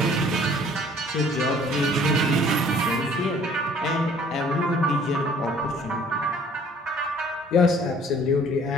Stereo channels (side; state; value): both; normal; correlation 0.56